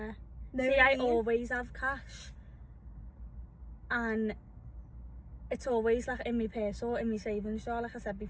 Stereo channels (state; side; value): identical; both; correlation 1.00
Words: No, See, I always have cash. And it's always like in my purse or in my savings jar, like I said